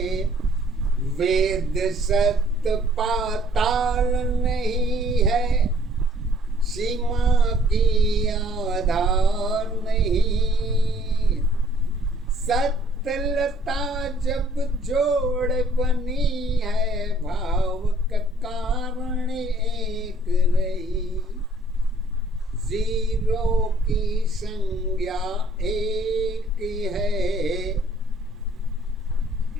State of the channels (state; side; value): normal; both; correlation 0.59